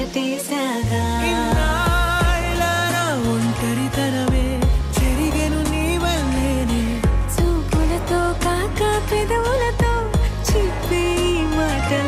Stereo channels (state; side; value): identical; both; correlation 1.00